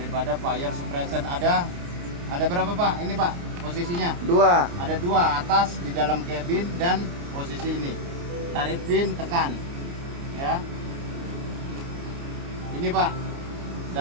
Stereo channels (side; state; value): left; late; 29 ms